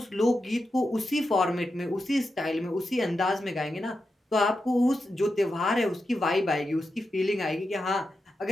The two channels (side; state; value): both; normal; correlation 0.89